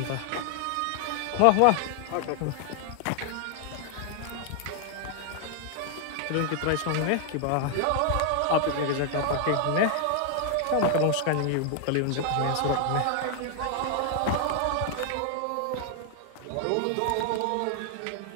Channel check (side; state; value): both; different; correlation 0.00